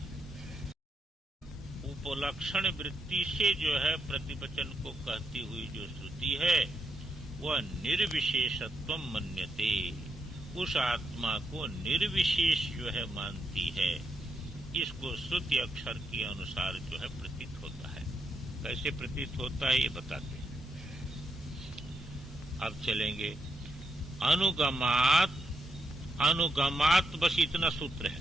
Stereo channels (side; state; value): both; normal; correlation 0.82